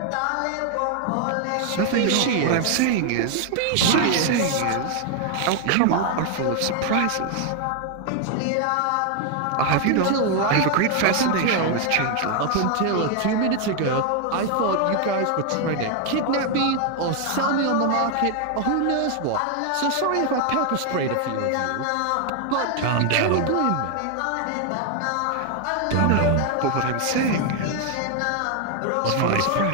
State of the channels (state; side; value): different; both; correlation 0.01